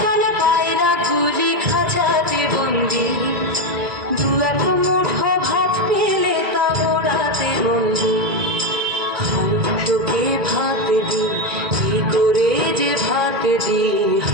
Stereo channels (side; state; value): left; late; 1.9 ms